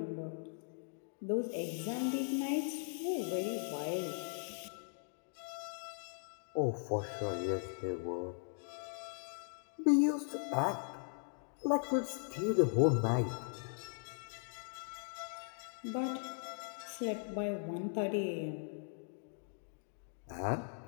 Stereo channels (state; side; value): silent; right; digital silence